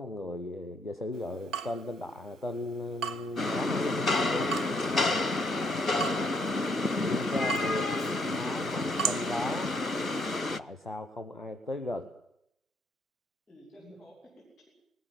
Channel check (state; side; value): normal; both; correlation 0.71